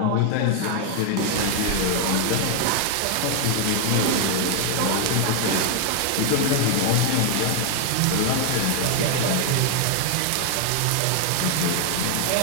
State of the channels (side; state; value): both; different; correlation 0.00